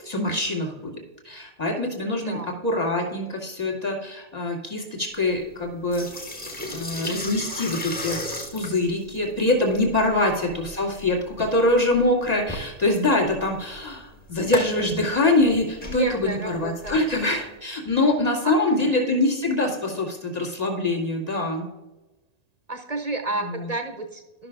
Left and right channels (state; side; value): late; left; 1.8 ms